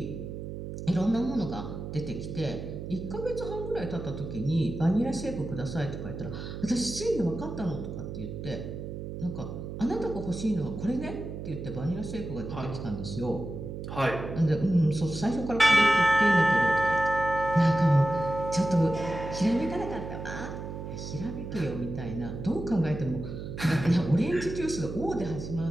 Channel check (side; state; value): right; noise; hum, 8 dB below the sound